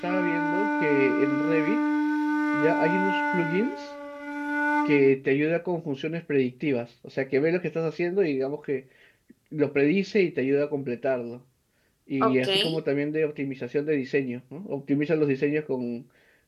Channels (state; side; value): identical; both; correlation 1.00